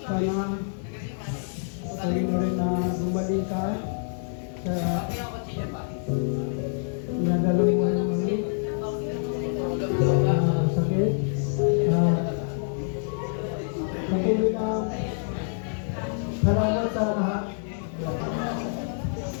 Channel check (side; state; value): right; silent; digital silence